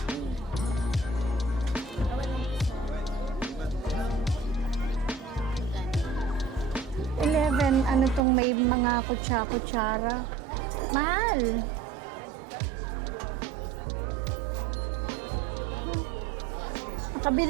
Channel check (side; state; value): left; drops out; at 8.2 s